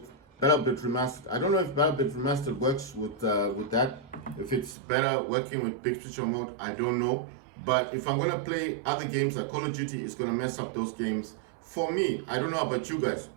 BattleBit Remastered. I don't know if BattleBit Remastered works with that. If it's better working with big picture mode, I don't know. But if I'm gonna play other games like Call of Duty, it's gonna mess up those games. For me, I don't know about you guys.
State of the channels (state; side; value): drops out; left; at 4.8 s